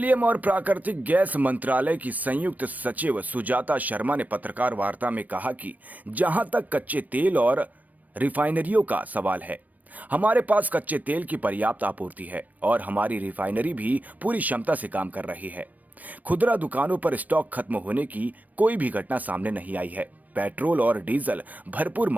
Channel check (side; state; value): left; late; 0.078 ms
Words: और प्राकृतिक gas मंत्रालय की संयुक्त सचिव सुजाता शर्मा ने पत्रकार वार्ता में कहा कि जहां तक कच्चे तेल और रिफाइनरियों का सवाल है, हमारे पास कच्चे तेल की पर्याप्त आपूर्ति है और हमारी रिफाइनरी भी पूरी क्षमता से काम कर रही है। खुदरा दुकानों पर स्टॉक खत्म होने की कोई भी घटना सामने नहीं आई है। पेट्रोल और डीजल भरपूर